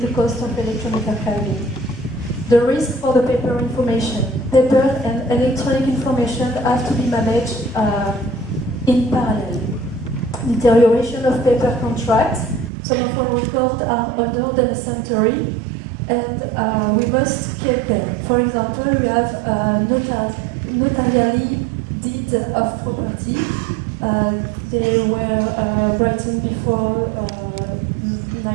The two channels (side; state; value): left; drops out; at 12.7 s